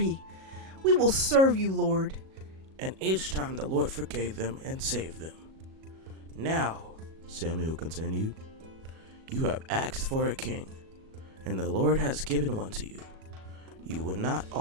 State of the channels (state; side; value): late; left; 37 ms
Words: We will serve you, Lord.' and each time the Lord forgave them and saved them. Now," Samuel continued, "you have asked for a king, and the Lord has given one to you. You will not